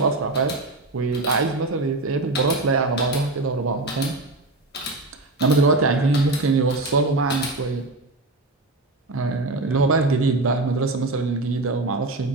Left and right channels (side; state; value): left; quieter; 3.0 dB